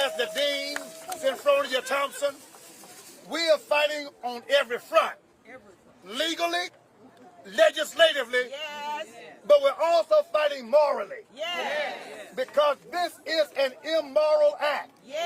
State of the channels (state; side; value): identical; both; correlation 1.00